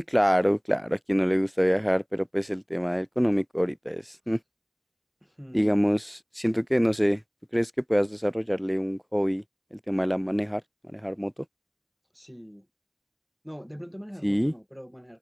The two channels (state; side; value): identical; both; correlation 1.00